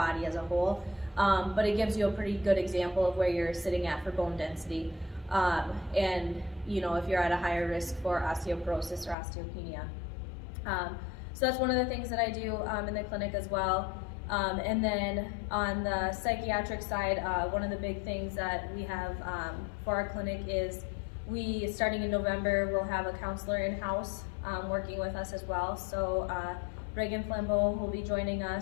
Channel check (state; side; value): drops out; right; at 9.2 s